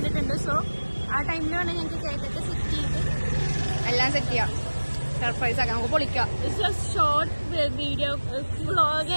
സോ ആ ടൈമിൽ വേണം ഞങ്ങൾക്ക് കേക്കൊക്കെ സെറ്റ് ചെയ്ത് എല്ലാം സെറ്റ് ചെയ്യാം. സർപ്രൈസ് ആക്കാം, നമുക്ക് പൊളിക്കാം. ഷോർട്ട് വീഡിയോ വ്ളോഗ്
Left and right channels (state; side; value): inverted; both; correlation -1.00